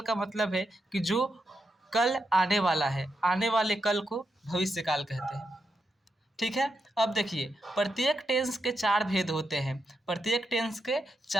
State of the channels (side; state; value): both; normal; correlation 0.85